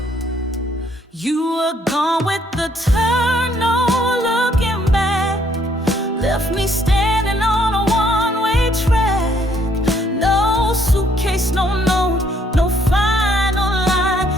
You were gone with the turn, no looking back, left me standing on a one-way track. No suitcase, no note, no final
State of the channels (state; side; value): normal; both; correlation 0.67